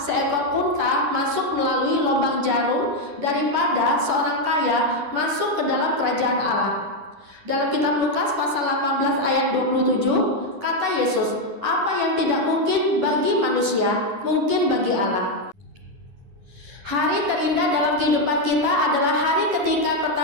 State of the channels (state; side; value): late; left; 9.7 ms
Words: unta masuk melalui lubang jarum daripada seorang kaya masuk ke dalam kerajaan Allah. Dalam kitab Lukas pasal 18 ayat 27, kata Yesus, apa yang tidak mungkin bagi manusia, mungkin bagi Allah. Hari terindah dalam kehidupan kita adalah hari ketika